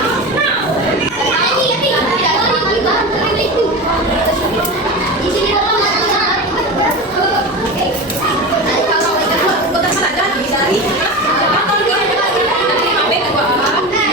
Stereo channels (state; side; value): normal; both; correlation 0.26